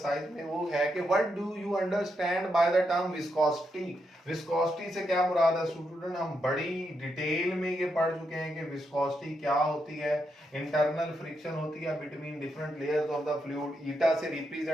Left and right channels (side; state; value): both; normal; correlation 0.82